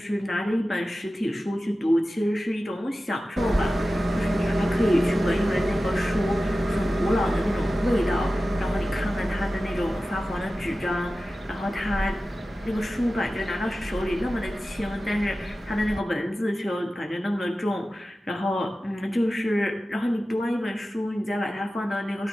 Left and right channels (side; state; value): both; normal; correlation 0.95